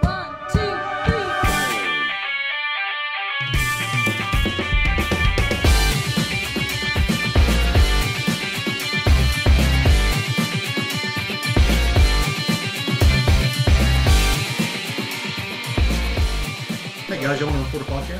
3. Hey guys, y'all want to record a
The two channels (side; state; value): both; identical; correlation 1.00